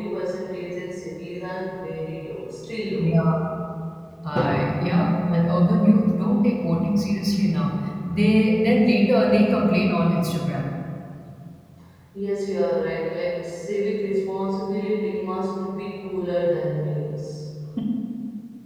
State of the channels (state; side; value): identical; both; correlation 1.00